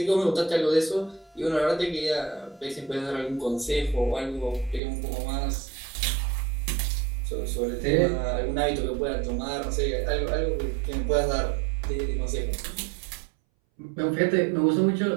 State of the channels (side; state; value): left; drops out; at 4.8 s